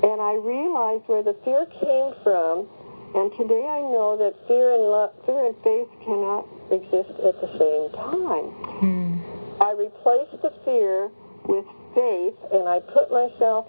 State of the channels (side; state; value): both; inverted; correlation -1.00